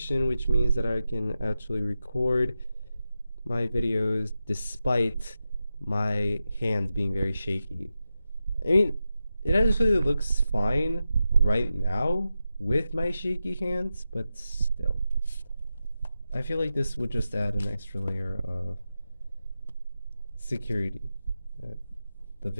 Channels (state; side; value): inverted; both; correlation -0.91